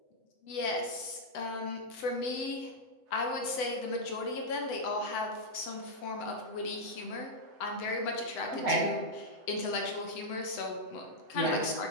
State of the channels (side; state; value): right; late; 8.0 ms